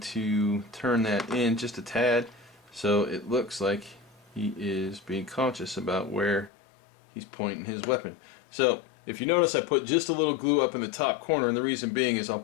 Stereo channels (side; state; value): right; drops out; at 6.5 s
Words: to turn that in just a tad so it looks like he is being conscious about where he's pointing his weapon. So if you notice, I put just a little glue up in the top corner, and the reason being is I'll